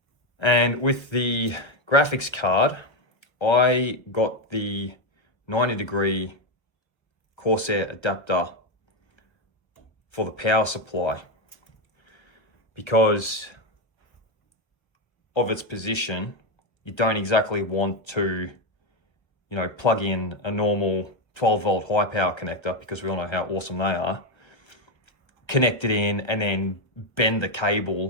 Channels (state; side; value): late; right; 1.0 ms